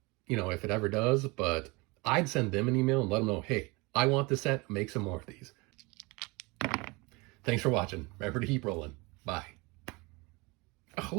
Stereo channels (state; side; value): quieter; left; 26.0 dB